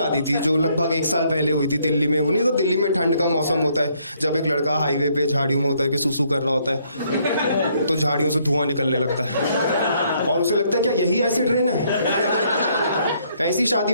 थी जो लगभग 1 साल पहले हुई थी दिल्ली में। वो नहीं तो दिल्ली में ठंड का मौसम होता है, जब एक लड़का हाईवे पे झाड़ियों में होता है कि सुसु कर रहा होता है, तो झाड़ियों से धुआं निकलने लगता है और उसे लगता है क्या यही एसिड रेन है। ऐसी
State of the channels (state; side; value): inverted; both; correlation -0.69